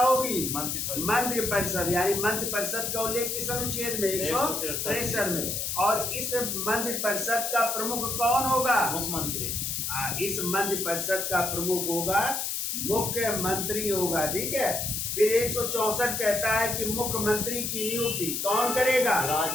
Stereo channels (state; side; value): noise; left; hiss, 2 dB below the sound